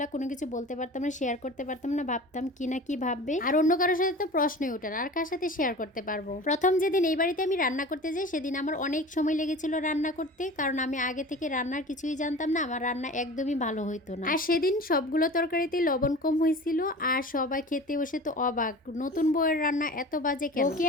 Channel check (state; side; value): normal; both; correlation 0.37